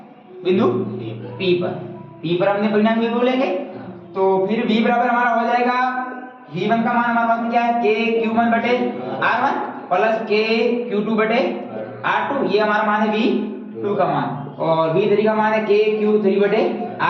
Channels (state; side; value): identical; both; correlation 1.00